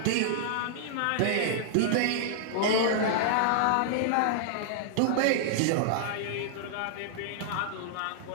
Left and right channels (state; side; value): different; both; correlation -0.01